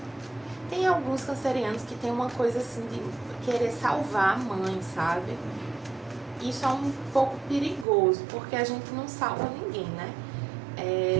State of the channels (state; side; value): drops out; left; at 7.9 s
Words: Tem alguns cancerianos que tem uma coisa assim de querer salvar a mãe, sabe? Isso é um pouco perigoso, porque a gente não salva ninguém, né?